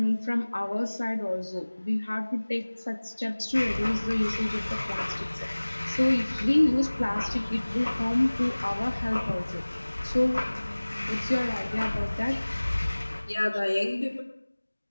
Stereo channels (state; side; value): inverted; both; correlation -1.00